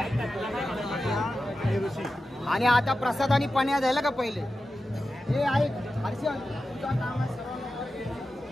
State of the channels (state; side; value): normal; both; correlation 0.92